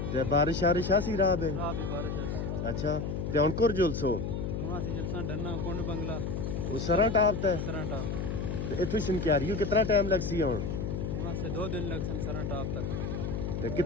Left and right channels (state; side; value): noise; left; hum, 2 dB below the sound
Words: ते बारिश शारिश आसी राह बे? रात भी बारिश है। अच्छा ते हुन कुर जुलसो वहाँ से जलसा डरना कुंड बंगला ओ सरन टाप ते सरन टाप। ते इथों शनक्यारी कितना टाइम लगसी हुन? वहाँ से 2 दिन लग सन सरन टाप तक। ते